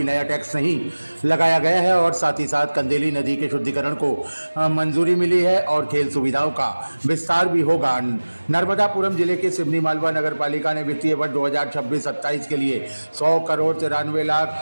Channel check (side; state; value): both; inverted; correlation -1.00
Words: नया टैक्स नहीं लगाया गया है और साथ ही साथ कंदेली नदी के शुद्धिकरण को मंजूरी मिली है और खेल सुविधाओं का विस्तार भी होगा। नर्मदापुरम जिले के सिवनी मालवा नगरपालिका ने वित्तीय वर्ष 2026-27 के लिए